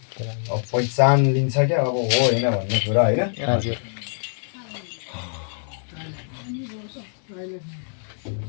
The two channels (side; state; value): right; silent; 62 dB below the other